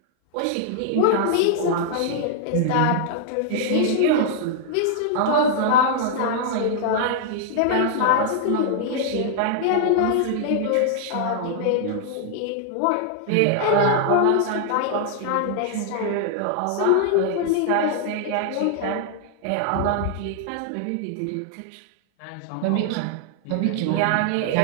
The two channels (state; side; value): different; both; correlation 0.00